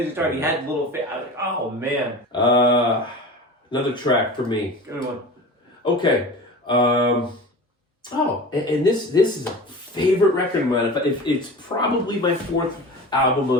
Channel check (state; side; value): normal; both; correlation 0.34